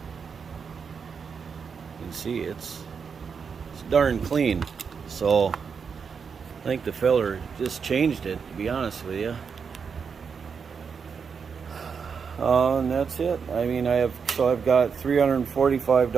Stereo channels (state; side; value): quieter; left; 6.1 dB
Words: can see it's darn clean. So I think the filler just changed it, to be honest with you. And that's it. I mean, I've got